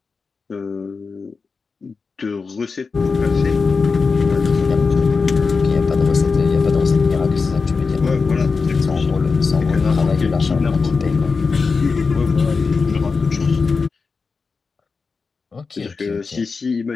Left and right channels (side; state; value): right; quieter; 4.7 dB